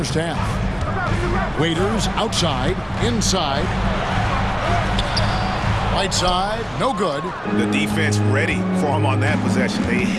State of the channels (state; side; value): identical; both; correlation 1.00